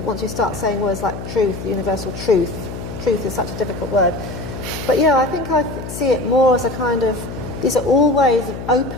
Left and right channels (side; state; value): left; noise; hum, 9 dB below the sound